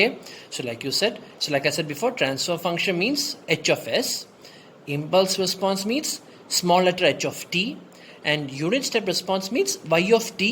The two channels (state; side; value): identical; both; correlation 1.00